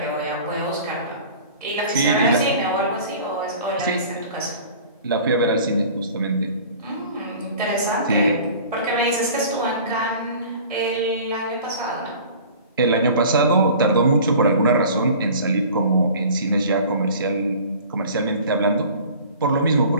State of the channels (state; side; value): inverted; both; correlation -0.44